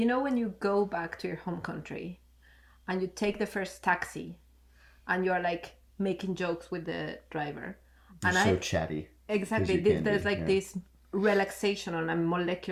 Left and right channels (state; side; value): identical; both; correlation 1.00